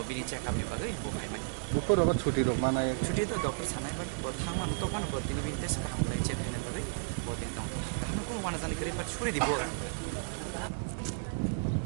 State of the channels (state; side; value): silent; left; digital silence